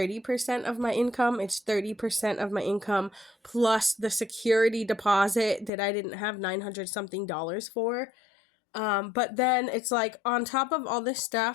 of my income, it's 30% of my income plus the security deposit that I didn't have $900 something for. But then it's like on top of all this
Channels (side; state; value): right; drops out; at 5.7 s